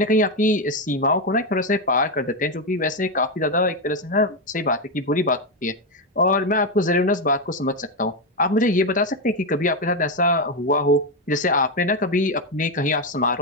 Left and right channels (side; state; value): both; normal; correlation 0.08